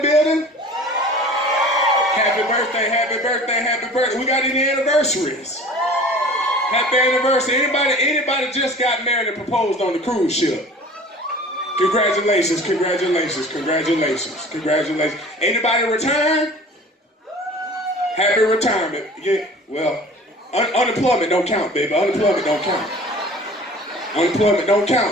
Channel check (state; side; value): normal; both; correlation 0.43